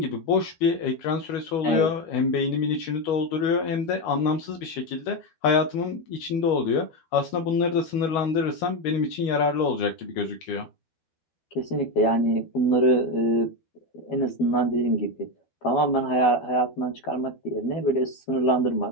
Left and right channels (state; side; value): late; right; 12 ms